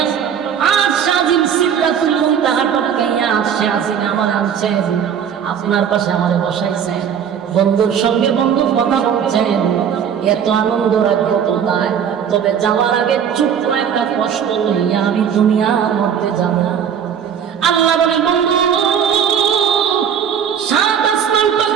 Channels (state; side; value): quieter; left; 8.1 dB